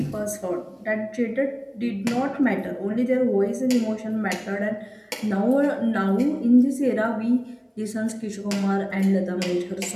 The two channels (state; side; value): identical; both; correlation 1.00